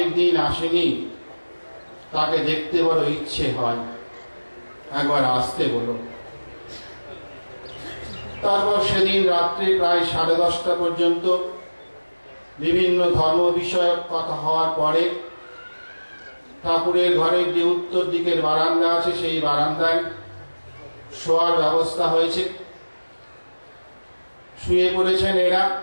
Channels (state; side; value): inverted; both; correlation -1.00